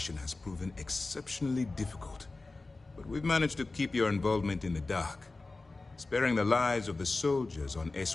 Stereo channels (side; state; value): right; quieter; 3.4 dB